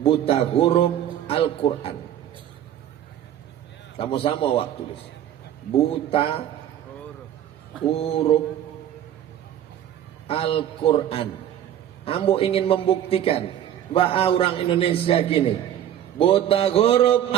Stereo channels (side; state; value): left; quieter; 10.9 dB